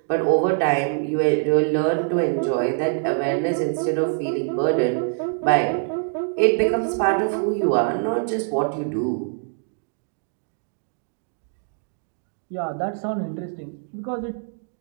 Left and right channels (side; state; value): left; silent; 63 dB below the other